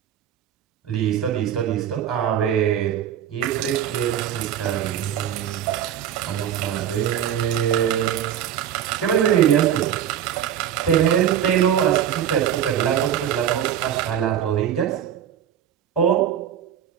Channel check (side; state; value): left; quieter; 9.9 dB